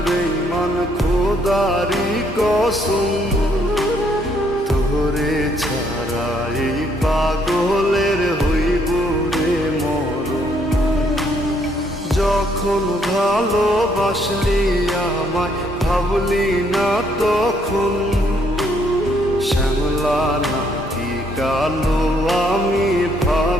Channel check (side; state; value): both; normal; correlation 0.69